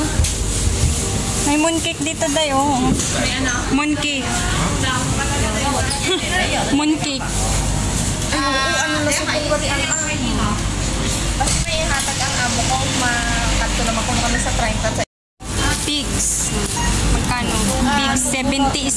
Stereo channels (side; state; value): both; identical; correlation 1.00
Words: May mooncake dito dayo. May ano? Mooncake. Mooncake. Ano na sa pagkari ang basta may hatag ang amo ko. Makanto naman kung kami sa 30. Pigs. Magkano? Pigs, 70